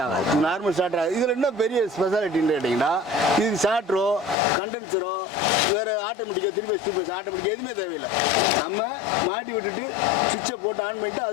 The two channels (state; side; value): drops out; right; at 4.4 s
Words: ஆகாது. நார்மல் ஸ்டார்டர் இதுல என்ன பெரிய ஸ்பெஷாலிட்டின்னு கேட்டீங்கன்னா இது ஸ்டார்டரோ கண்டென்சரோ வேற ஆட்டோமேட்டிக்கா 3 பேஸ் 2 பேஸ் ஆட்டோமேட்டிக் எதுவுமே தேவையில்லை. நம்ம மாட்டி விட்டுட்டு சுவிட்சை போட்டு ஆன் பண்ணிட்டு